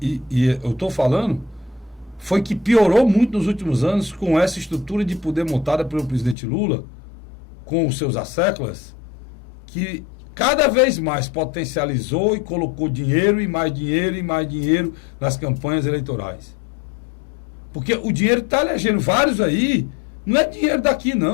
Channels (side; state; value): right; drops out; at 6.4 s